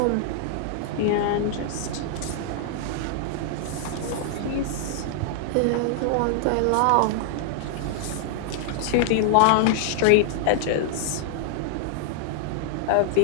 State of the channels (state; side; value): different; both; correlation -0.01